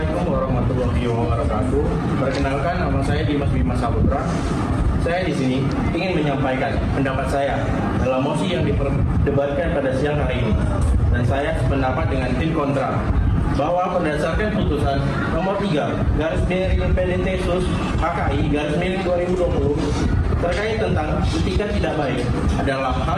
warahmatullahi wabarakatuh. Perkenalkan, nama saya Dimas Bima Saputra. Saya di sini ingin menyampaikan pendapat saya dalam mosi yang diperdebatkan pada siang hari ini. Dan saya sependapat dengan tim kontra bahwa berdasarkan putusan nomor 3/PDT-SUS HKI/2020 terkait tentang etikat tidak baik adalah hal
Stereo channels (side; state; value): both; identical; correlation 1.00